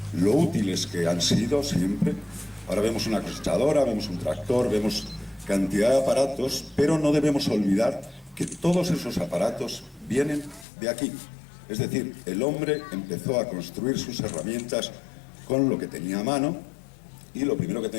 lo útiles que han sido siempre. Ahora vemos una cosechadora, vemos un tractor, vemos cantidad de aparatos, pero no debemos olvidar que todos esos aparatos vienen de aquí. Es decir, el hombre empezó a construir sus herramientas con lo que tenía a mano, y lo primero que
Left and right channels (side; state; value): right; drops out; at 10.7 s